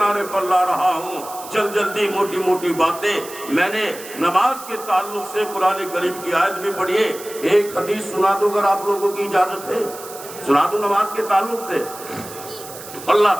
پر لا رہا ہوں۔ جلدی موٹی موٹی باتیں میں نے نماز کے تعلق سے قرآن کریم کی آیت بھی پڑھی ہے۔ ایک حدیث سنا دو اگر آپ لوگوں کی اجازت ہے، سنا دو نماز کے تعلق سے۔ اللہ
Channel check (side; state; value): right; noise; hiss, 14 dB below the sound